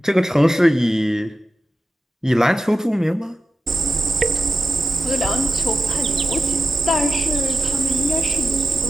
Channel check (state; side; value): normal; both; correlation 0.93